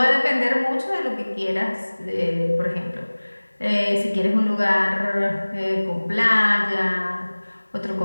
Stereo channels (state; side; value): inverted; both; correlation -1.00